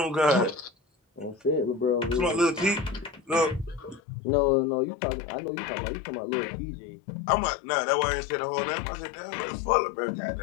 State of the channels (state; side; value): drops out; right; at 4.0 s